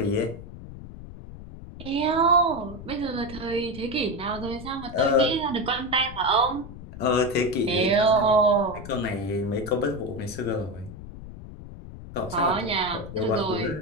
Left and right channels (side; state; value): left; noise; rumble, 13 dB below the sound